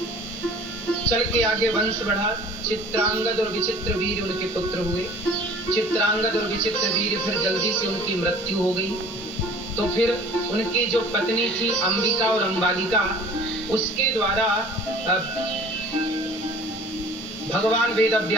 चल के आगे वंश बढ़ा। चित्रांगद और विचित्र वीर उनके पुत्र हुए। चित्रांगद और विचित्र वीर फिर जल्दी से उनकी मृत्यु हो गई। तो फिर उनकी जो पत्नी थी अंबिका और अंबालिका, उसके द्वारा भगवान वेद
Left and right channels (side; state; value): both; normal; correlation 0.48